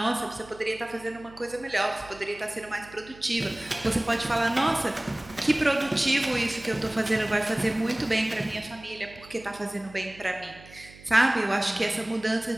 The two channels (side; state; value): right; noise; hum, 21 dB below the sound